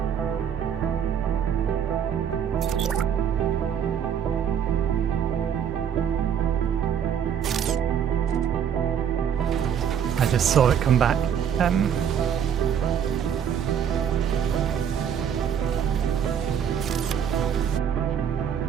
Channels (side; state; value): left; quieter; 8.3 dB